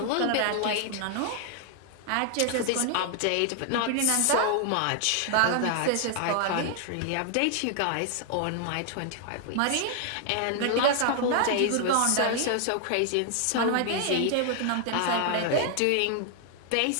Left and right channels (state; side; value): different; both; correlation 0.00